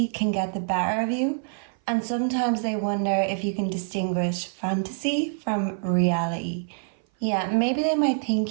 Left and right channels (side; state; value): left; silent; 57 dB below the other